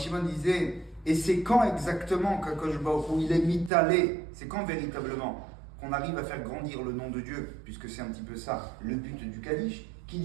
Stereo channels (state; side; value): drops out; left; at 3.7 s